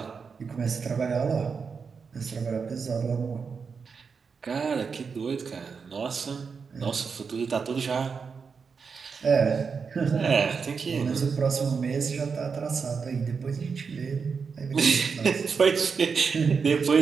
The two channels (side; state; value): left; quieter; 5.6 dB